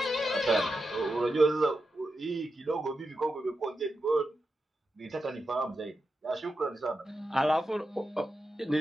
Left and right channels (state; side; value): normal; both; correlation 0.89